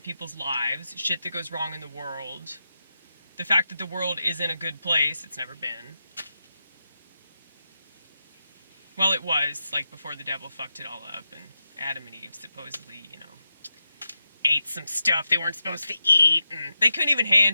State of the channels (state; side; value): inverted; both; correlation -0.87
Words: people's lives, shit that goes wrong in the world, the fact that the world isn't a good place, it's never been. Well, it was, like, before the devil fucked it all up, and Adam and Eve supposedly, ate some stuff they weren't supposed to eat, and they couldn't even